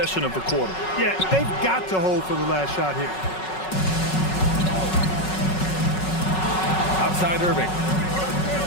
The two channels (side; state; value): right; late; 5.4 ms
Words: of the quarter. Yeah, they've got to hold for the last shot here. Outside Irving.